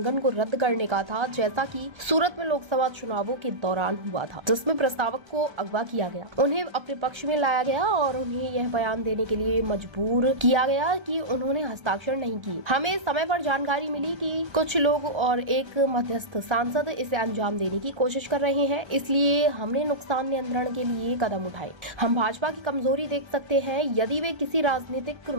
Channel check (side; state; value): left; late; 1.3 ms